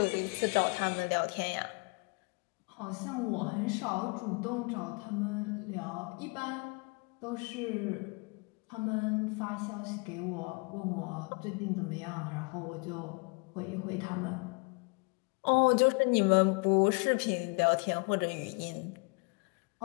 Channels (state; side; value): quieter; right; 32.3 dB